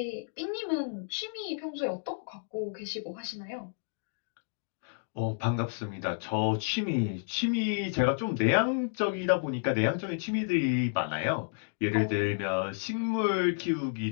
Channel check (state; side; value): silent; right; digital silence